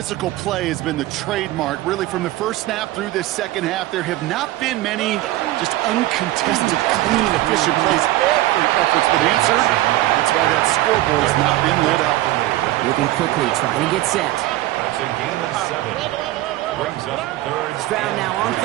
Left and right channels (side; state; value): left; quieter; 16.2 dB